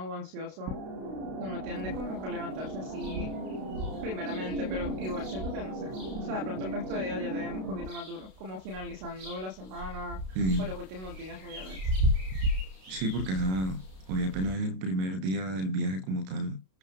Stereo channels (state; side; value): late; left; 32 ms